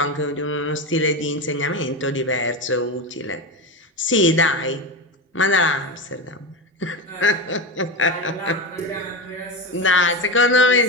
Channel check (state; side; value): normal; both; correlation 0.19